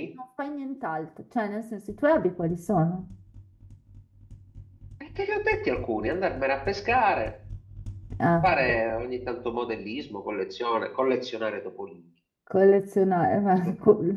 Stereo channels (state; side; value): identical; both; correlation 1.00